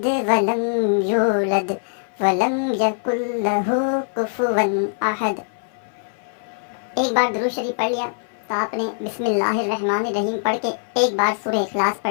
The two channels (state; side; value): silent; right; 57 dB below the other